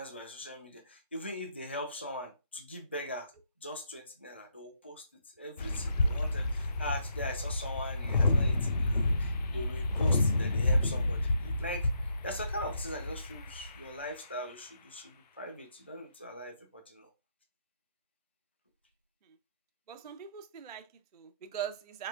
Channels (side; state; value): both; inverted; correlation -0.76